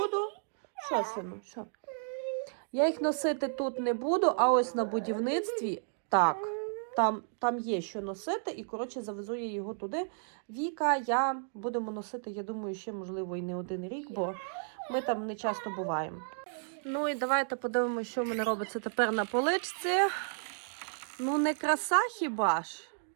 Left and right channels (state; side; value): silent; left; digital silence